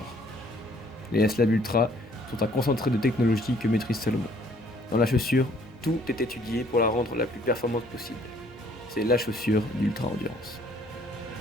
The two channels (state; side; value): normal; both; correlation 0.61